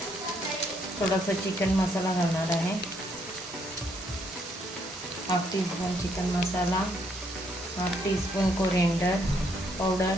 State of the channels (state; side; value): normal; both; correlation 0.71